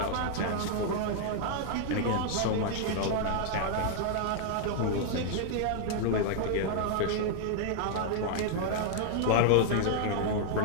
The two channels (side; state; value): both; different; correlation 0.00